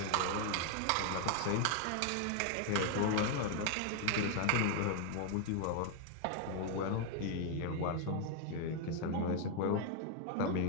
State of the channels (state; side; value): different; both; correlation 0.00